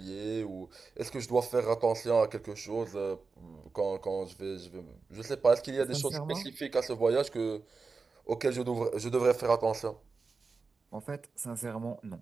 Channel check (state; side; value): quieter; left; 4.5 dB